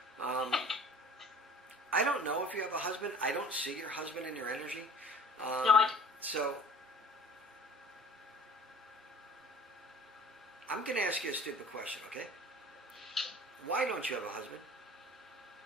I don't know if you have a husband. I don't see your husband in your energy. No, I don't. So... I'm going to ask you a stupid question, okay? Why don't you have a husband?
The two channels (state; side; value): normal; both; correlation 0.45